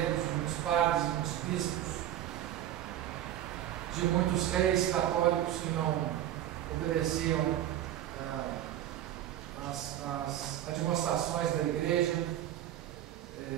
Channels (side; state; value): left; quieter; 12.3 dB